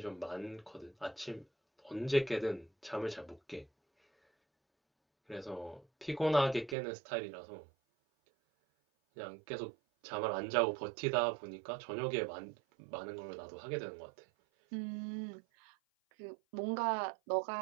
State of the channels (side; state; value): left; drops out; at 6.8 s